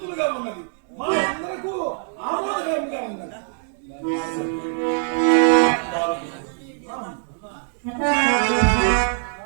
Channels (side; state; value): left; silent; 64 dB below the other